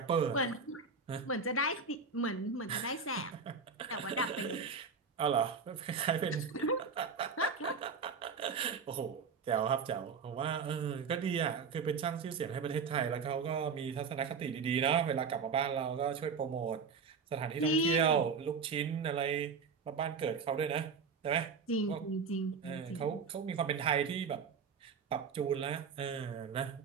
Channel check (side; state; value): left; quieter; 5.4 dB